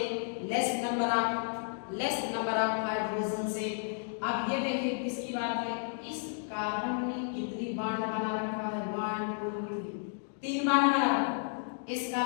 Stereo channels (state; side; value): silent; right; digital silence